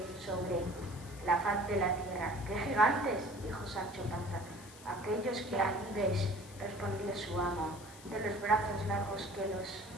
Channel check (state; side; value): noise; left; hiss, 18 dB below the sound